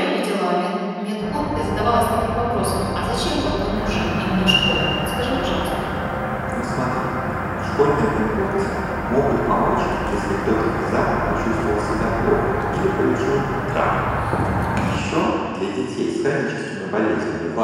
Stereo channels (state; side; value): identical; both; correlation 1.00